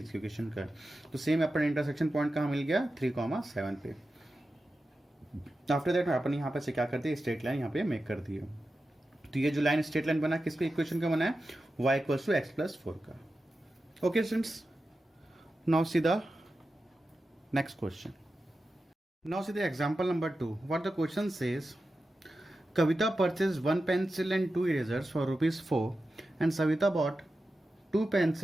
इक्वेशन का है। तो सेम अपन इंटरसेक्शन पॉइंट कहाँ मिल गया 3,7 पे। आफ्टर दैट अपन यहाँ पे से क्या करते हैं, स्ट्रेट लाइन यहाँ पे मेक कर दिए। तो ये जो लाइन स्ट्रेट लाइन बना किसके इक्वेशन का बना है, y इक्वल्स टू x+4 का। Okay students, now see the next question. Now see the example number 2। What the question says, Kavita purchased 1 pencil and 2 erasers for ₹4 and Savita bought 2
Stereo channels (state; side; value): normal; both; correlation 0.92